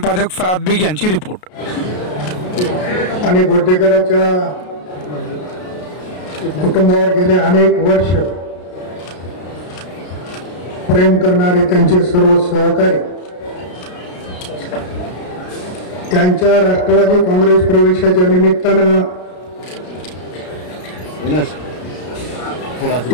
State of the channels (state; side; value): late; right; 33 ms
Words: फराद बेग यांची रिपोर्ट. आणि गोटेकरांच्या कुटुंबावर गेले अनेक वर्ष प्रेम करणारे त्यांचे सर्व सहकारी त्यांच्या राष्ट्रवादी काँग्रेस प्रवेशाच्या निमित्तानं